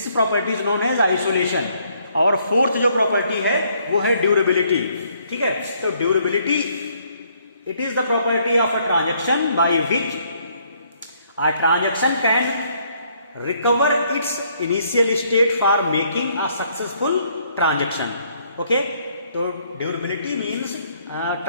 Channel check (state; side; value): inverted; both; correlation -0.68